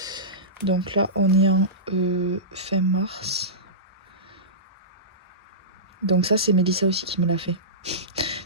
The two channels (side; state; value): both; normal; correlation -0.19